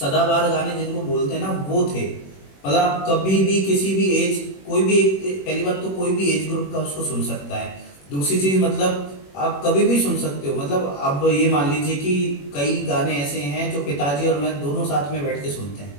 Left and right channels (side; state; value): right; late; 21 ms